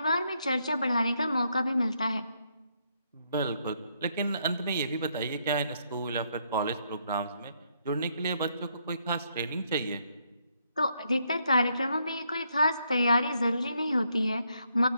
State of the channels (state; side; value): inverted; both; correlation -0.74